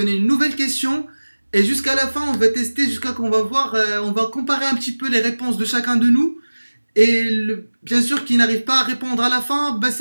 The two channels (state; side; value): inverted; both; correlation -1.00